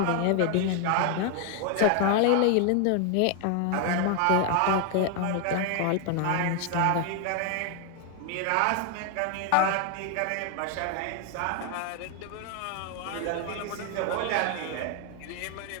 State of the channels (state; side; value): different; both; correlation 0.00